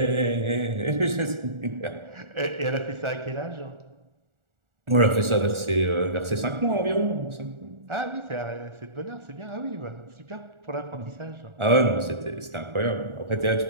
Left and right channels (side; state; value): left; late; 1.4 ms